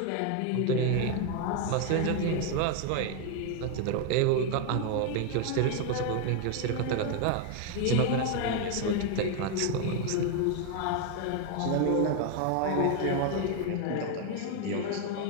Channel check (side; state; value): both; different; correlation 0.01